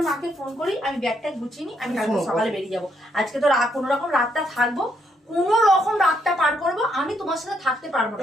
মাকে ফোন করি, আমি ব্যাগটা গুছিয়ে নিই, আমি কালকে সকালে বেরিয়ে যাবো। আজকে তো কোনো রকম রাতটা থাকবো, কোনো রকম রাতটা পার করবো। আমি তোমার সাথে থাকতে পারবো না,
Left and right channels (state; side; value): normal; both; correlation 0.75